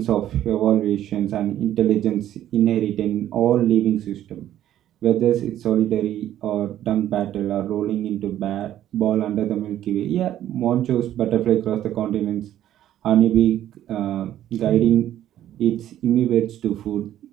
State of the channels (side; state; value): left; quieter; 12.0 dB